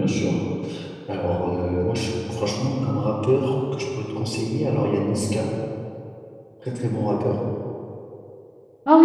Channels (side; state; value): both; identical; correlation 1.00